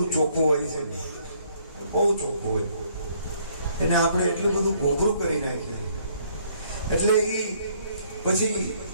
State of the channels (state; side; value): inverted; both; correlation -0.65